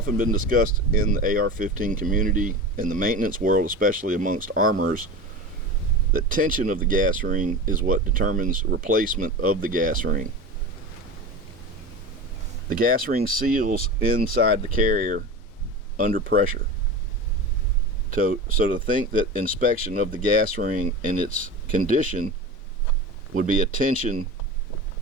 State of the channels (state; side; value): normal; both; correlation 0.29